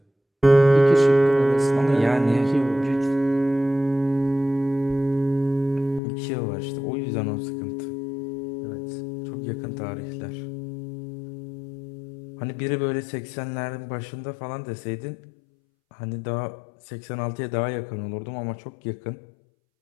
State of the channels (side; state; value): right; drops out; at 6.0 s